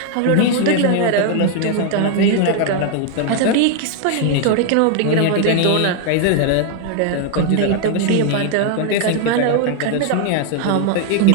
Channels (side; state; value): both; different; correlation 0.00